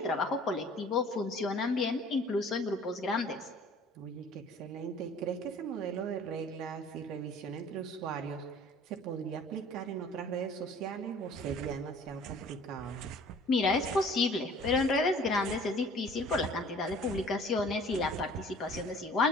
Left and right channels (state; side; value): normal; both; correlation 0.50